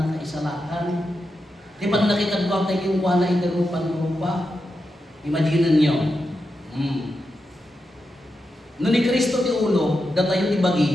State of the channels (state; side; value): normal; both; correlation 0.88